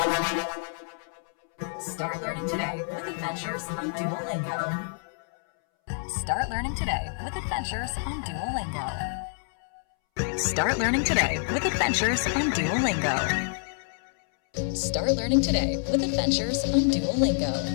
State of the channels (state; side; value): silent; right; 60 dB below the other